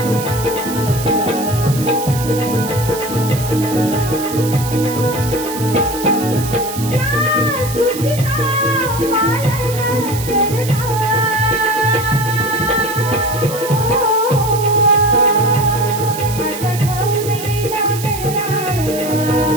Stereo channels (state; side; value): noise; right; hiss, 10 dB below the sound